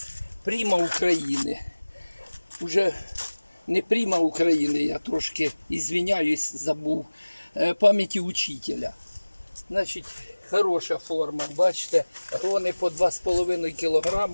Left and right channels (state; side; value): inverted; both; correlation -1.00